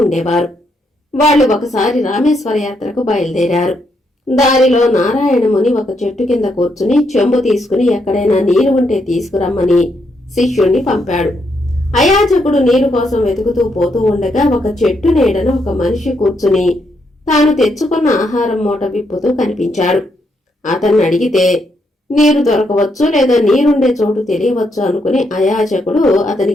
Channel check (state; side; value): normal; both; correlation 0.77